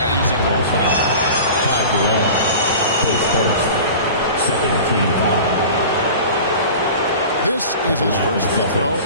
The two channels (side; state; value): both; inverted; correlation -0.37